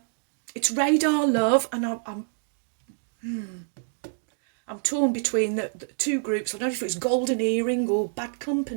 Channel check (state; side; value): silent; left; digital silence